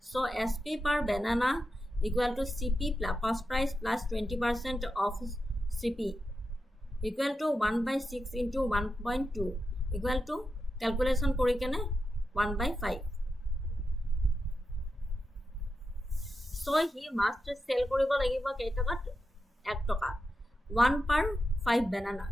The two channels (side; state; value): both; normal; correlation 0.88